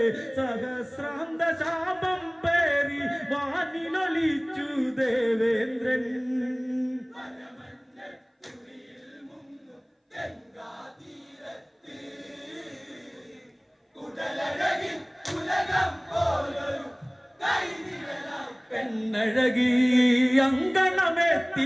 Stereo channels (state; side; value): identical; both; correlation 1.00